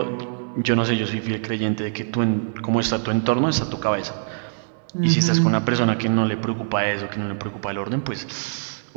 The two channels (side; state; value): left; silent; 63 dB below the other